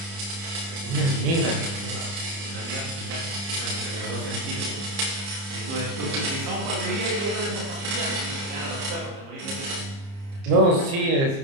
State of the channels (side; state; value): left; late; 30 ms